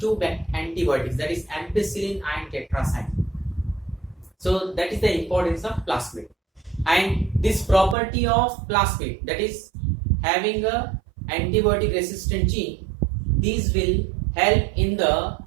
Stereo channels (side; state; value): left; drops out; at 8.0 s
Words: antibiotics, that is ampicillin and tetracycline. So that is the importance of plasmid. And this property of plasmid, that is having a antibiotic resistant gene, these will help in the